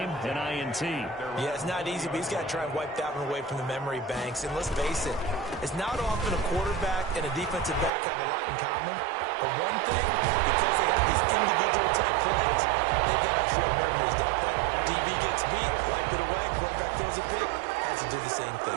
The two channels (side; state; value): left; drops out; at 7.9 s